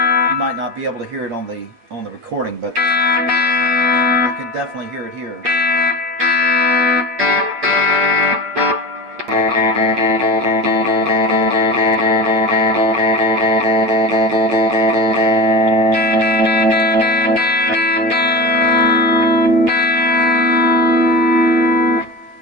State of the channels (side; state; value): left; late; 8.6 ms